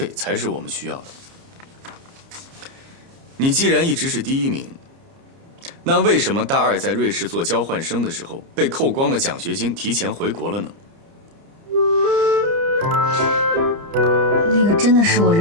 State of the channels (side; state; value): left; late; 30 ms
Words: 才是我们需要的。你既然一直是第1名，那为什么大2在瑞士做交换生的时候被扣光了奖学金，提前回国了呢？那个真的是我